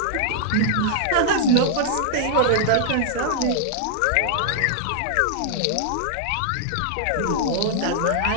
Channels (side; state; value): both; different; correlation -0.01